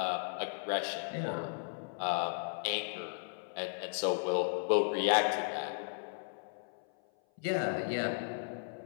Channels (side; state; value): right; silent; 54 dB below the other